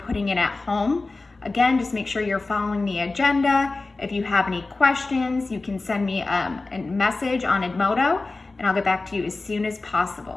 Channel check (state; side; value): quieter; right; 3.4 dB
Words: in at home. Again, just make sure you're following the agenda. If you have any questions, you can send me a message on Edmodo, and I'll get back to you as soon as